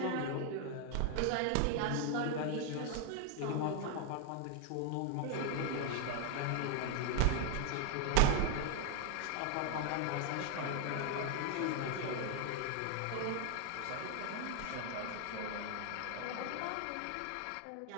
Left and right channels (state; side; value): different; both; correlation 0.01